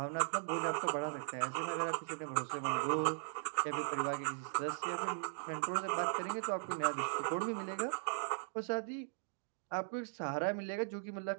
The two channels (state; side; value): silent; left; digital silence